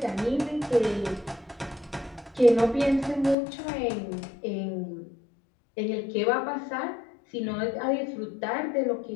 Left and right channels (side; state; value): right; drops out; at 3.4 s